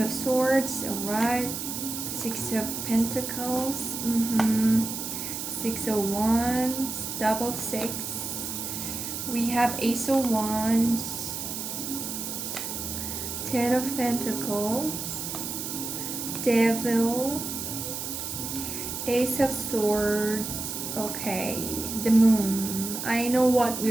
of Swords, alright. 6 of Pentacles, 6 of Wands, double 6. We have Ace of Wands, 10 of Pentacles, Devil, Ace of Swords. Okay, the Moon. I know what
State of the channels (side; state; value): right; noise; hiss, 5 dB below the sound